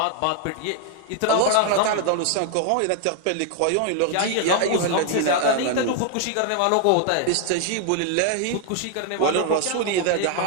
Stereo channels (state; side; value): different; both; correlation 0.00